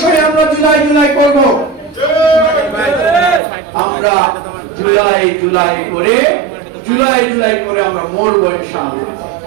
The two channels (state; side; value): drops out; left; at 3.4 s